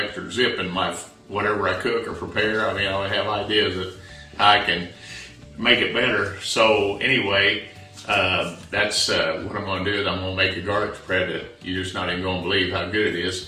zip in my whatever I cook or prepare. I mean, I have ideas that I can make it better. So anyway, that's what I'm going to do. Is I'm going to make a garlic spread that you're just not even going to believe how good it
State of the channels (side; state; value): both; identical; correlation 1.00